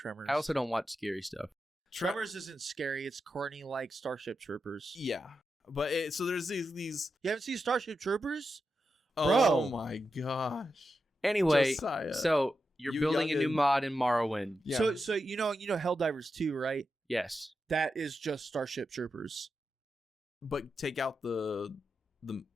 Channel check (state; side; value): normal; both; correlation 0.88